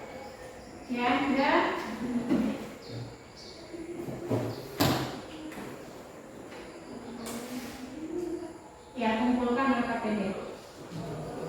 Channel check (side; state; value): both; identical; correlation 1.00